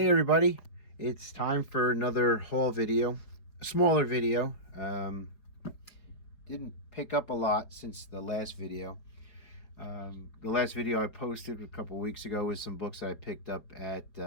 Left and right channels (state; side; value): late; right; 4.8 ms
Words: everybody, it's time for another haul video, a smaller video. Didn't pick up a lot since the last video. The last video I posted a couple weeks ago was some books that I picked up at